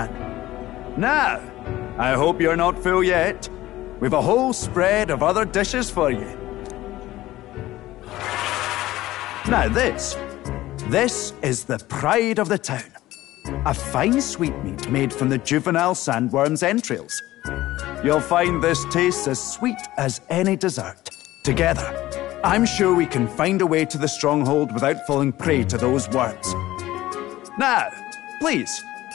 Now, I hope you're not full yet. We've a whole spread of other dishes for you. Now this is the pride of the town. A fine sweetmeat made from the juvenile sandworm's entrails. You'll find this tastes as sweet as any dessert. Together, I'm sure we can find a way to the stronghold without falling prey to those worms. Now, please,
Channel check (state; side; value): quieter; right; 16.1 dB